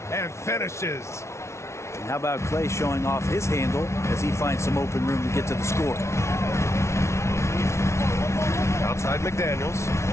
and finishes. And how about Clay showing off his handle as he finds some open room to get to the score? Outside McDaniels.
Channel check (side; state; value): right; late; 0.13 ms